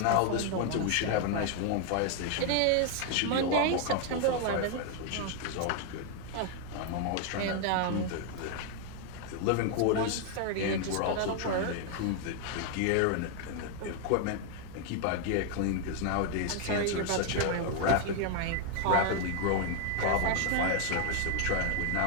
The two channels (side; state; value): both; different; correlation 0.00